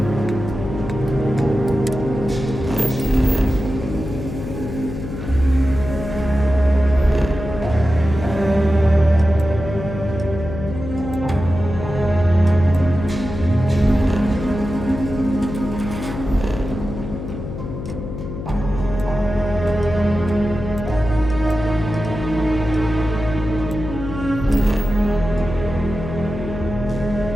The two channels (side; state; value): left; noise; hum, 8 dB below the sound